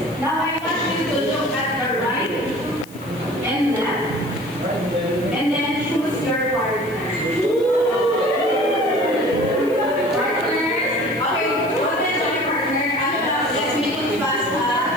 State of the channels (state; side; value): noise; left; hiss, 22 dB below the sound